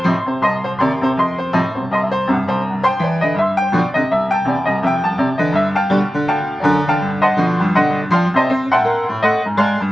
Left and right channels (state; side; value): normal; both; correlation 0.94